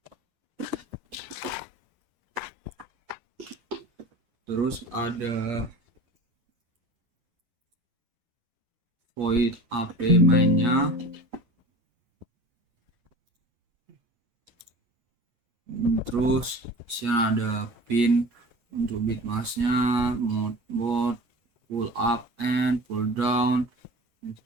Terus ada void AP mainnya, terus sini ada pin untuk bit masknya, mode pull up and pull down,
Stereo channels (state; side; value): late; left; 8.5 ms